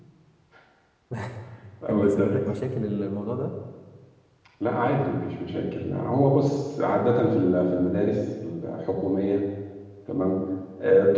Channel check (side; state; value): both; identical; correlation 1.00